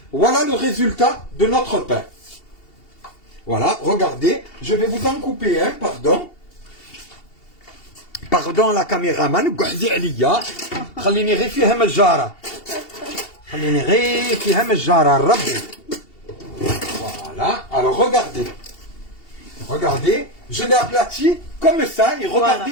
voilà le résultat de notre pain. Voilà, regardez, je vais vous en couper un, pardon. باردون لا كاميرامان قعدي عليا خليني غير فيها مجاره خليني غير فيها مجاره ربي فوالا alors regardez je l'ai aplati comme ça et regardez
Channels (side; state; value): right; late; 2.7 ms